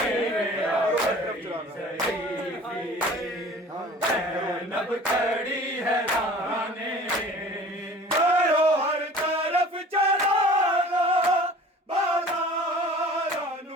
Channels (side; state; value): both; normal; correlation 0.45